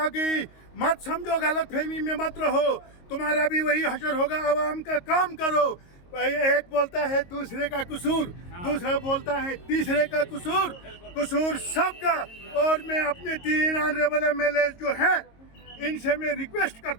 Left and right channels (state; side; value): late; right; 22 ms